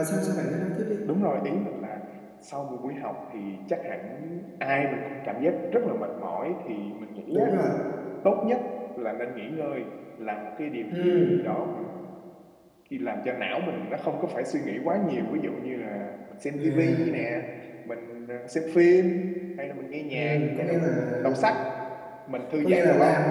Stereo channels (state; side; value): identical; both; correlation 1.00